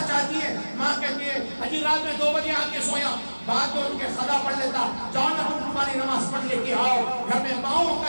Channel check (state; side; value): inverted; both; correlation -1.00